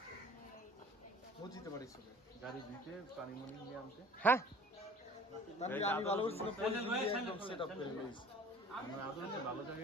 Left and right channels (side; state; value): both; normal; correlation 0.48